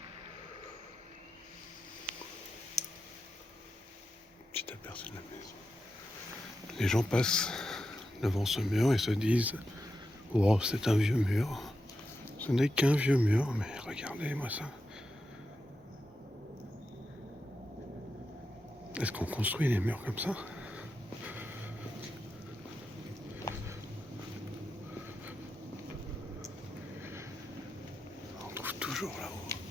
Petit aperçu de la maison. Les gens passent devant ce mur et se disent « Oh, c'est un vieux mur. » Ce n'est qu'un vieux mur, mais regardez-moi ça. Est-ce qu'on construit les murs comme ça?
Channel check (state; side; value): normal; both; correlation 0.88